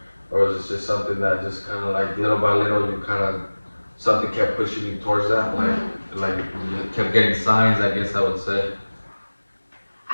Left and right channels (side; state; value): both; inverted; correlation -1.00